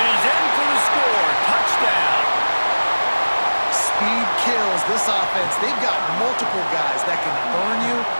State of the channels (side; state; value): both; inverted; correlation -1.00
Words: he's in for the score. Touchdown. Speed kills this offense. They've got multiple guys that can burn you.